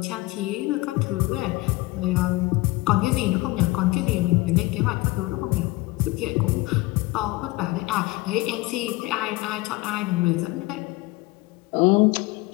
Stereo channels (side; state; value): right; quieter; 21.0 dB